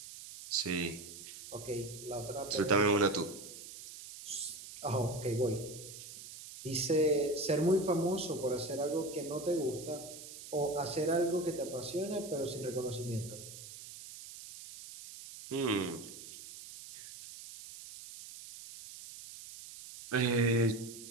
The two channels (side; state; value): right; noise; hiss, 13 dB below the sound